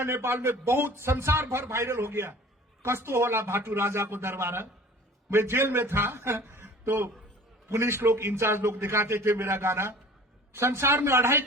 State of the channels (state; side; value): normal; both; correlation 0.45